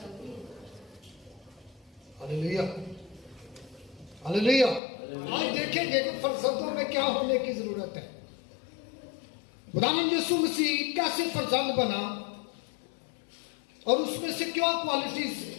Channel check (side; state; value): right; drops out; at 4.8 s